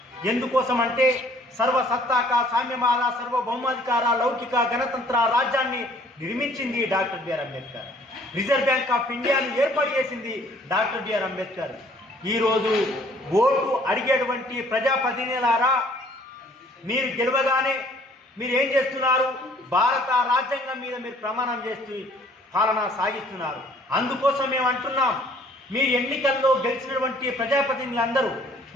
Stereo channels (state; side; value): normal; both; correlation 0.57